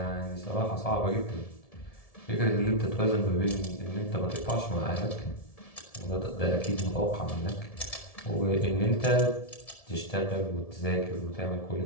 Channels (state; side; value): late; right; 1.7 ms